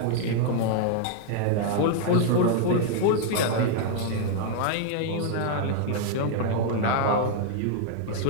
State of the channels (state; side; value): different; both; correlation 0.00